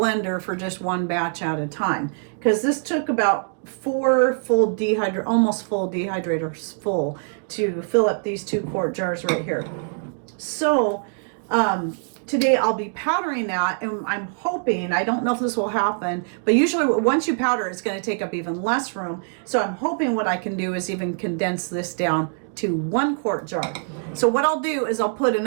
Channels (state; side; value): silent; left; 63 dB below the other